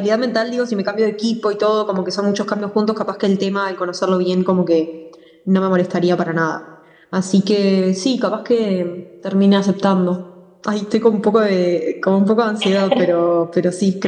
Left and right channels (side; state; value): both; identical; correlation 1.00